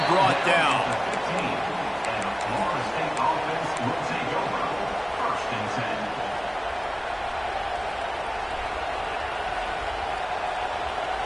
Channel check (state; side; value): identical; both; correlation 1.00